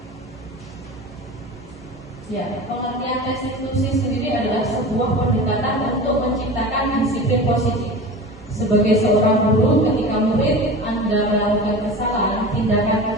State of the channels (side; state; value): both; normal; correlation 0.33